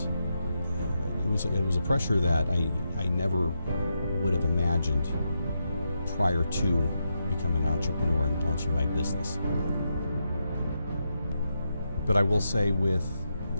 a pressure that I never would have imagined prior to becoming an entrepreneur and launching my business. But I will say, with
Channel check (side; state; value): both; inverted; correlation -0.84